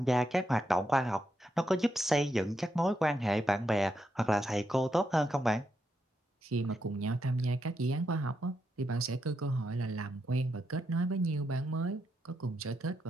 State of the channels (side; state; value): both; normal; correlation 0.82